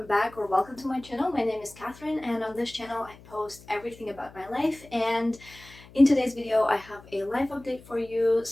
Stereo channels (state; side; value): noise; left; hum, 22 dB below the sound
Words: back or welcome to my channel. My name is Catherine, and on this channel I post everything about my life. And in today's video I have a life update for you